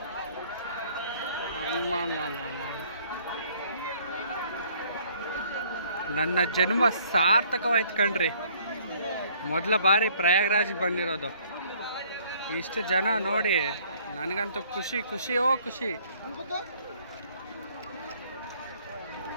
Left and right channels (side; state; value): both; inverted; correlation -0.60